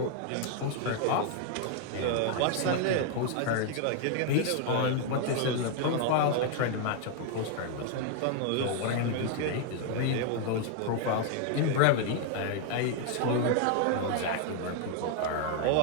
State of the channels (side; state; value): both; different; correlation 0.00